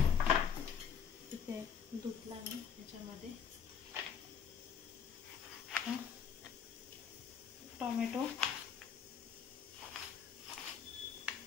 इथे धुतला मी त्याच्यामध्ये टोमॅटो.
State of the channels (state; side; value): quieter; right; 7.5 dB